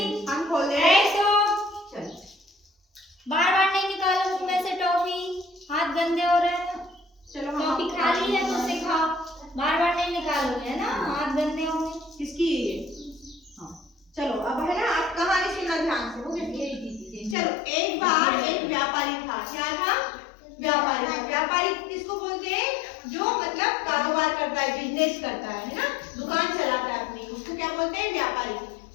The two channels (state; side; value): drops out; right; at 17.4 s